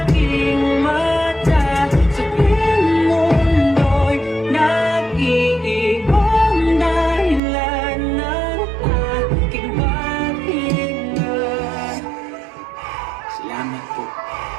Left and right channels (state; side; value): drops out; left; at 7.4 s